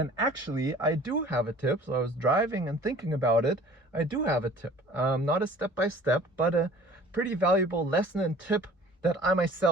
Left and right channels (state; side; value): normal; both; correlation 0.48